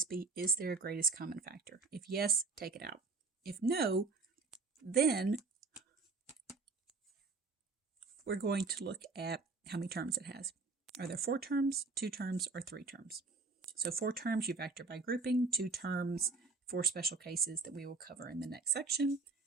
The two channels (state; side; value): quieter; left; 4.1 dB